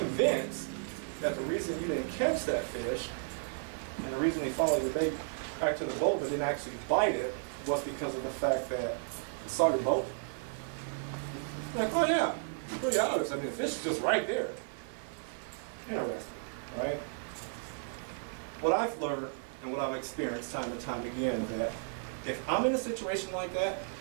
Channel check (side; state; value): left; silent; 55 dB below the other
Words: that the reason you didn't catch that fish, and the reason he followed your bait back to the boat but didn't actually bite it, was because of the fact that you saw your boat? I'm like, oh yeah, it's pretty obvious. I mean, the fish is just right there. Interesting, right? What I've learned and what I've experienced time and time again, that if I'm in a situation like that